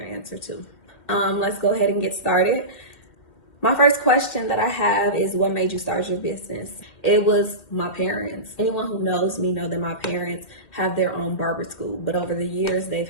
answer too. Let's go ahead and get started. My first question that I have is, what made you start your business? It was my parents. Anyone who knows me know that my parents have their own barber school, but over the years they've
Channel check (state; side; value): late; right; 2.2 ms